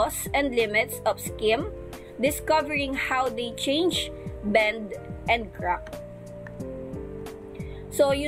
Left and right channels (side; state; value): both; identical; correlation 1.00